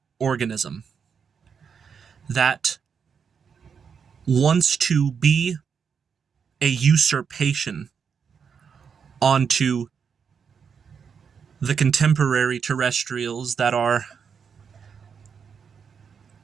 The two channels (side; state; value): left; quieter; 6.6 dB